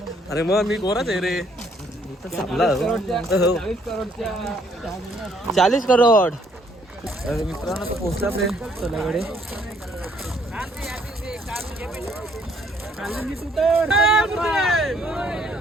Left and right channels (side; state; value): both; normal; correlation 0.66